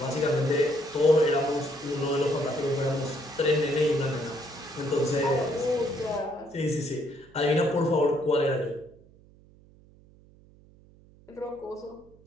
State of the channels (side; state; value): right; noise; hum, 26 dB below the sound